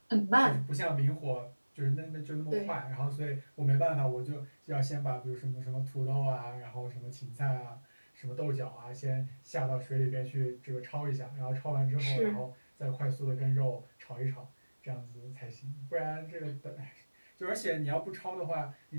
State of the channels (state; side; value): inverted; both; correlation -1.00